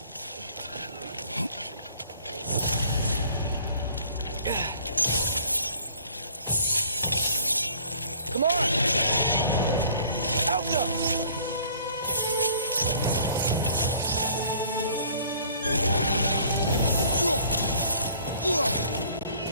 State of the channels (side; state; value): both; inverted; correlation -0.55